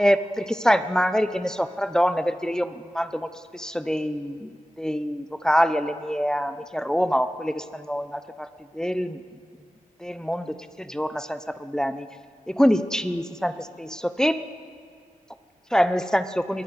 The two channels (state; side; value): normal; both; correlation 0.96